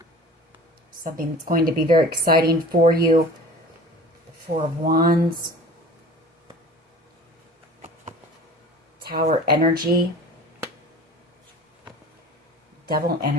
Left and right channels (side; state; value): both; normal; correlation 0.41